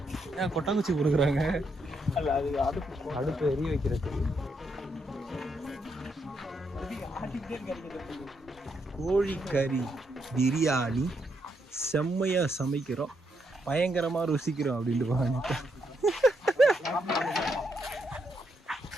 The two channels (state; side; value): normal; both; correlation 0.78